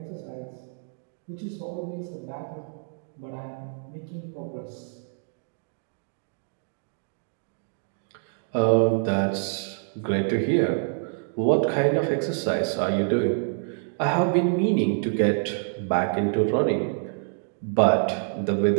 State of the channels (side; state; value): left; silent; digital silence